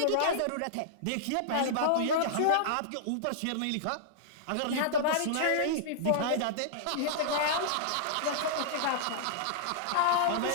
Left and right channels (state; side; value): different; both; correlation -0.02